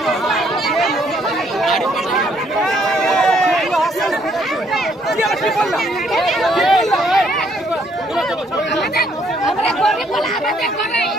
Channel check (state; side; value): normal; both; correlation 0.67